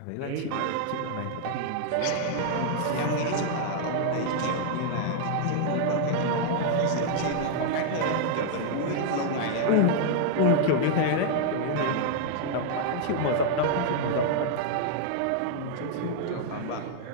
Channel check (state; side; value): different; both; correlation 0.00